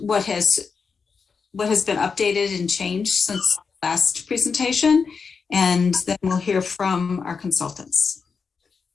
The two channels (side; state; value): right; quieter; 5.4 dB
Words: has been updated and changed since last presentation, and then we'll hear from our consultants.